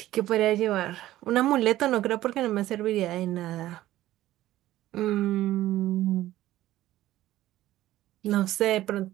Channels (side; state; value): left; quieter; 14.9 dB